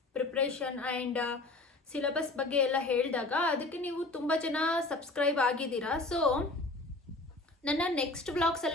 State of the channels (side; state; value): right; quieter; 3.0 dB